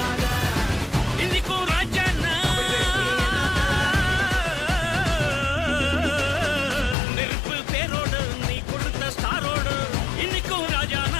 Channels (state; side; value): drops out; right; at 7.0 s